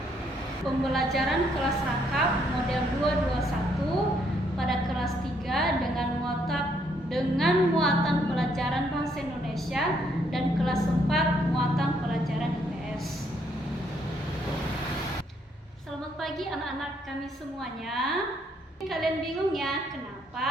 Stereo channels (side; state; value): both; normal; correlation 0.71